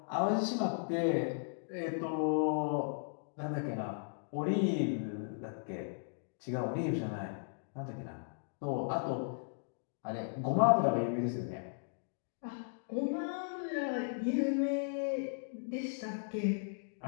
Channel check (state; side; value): silent; right; digital silence